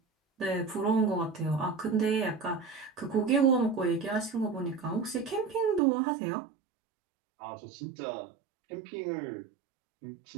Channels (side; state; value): left; drops out; at 5.8 s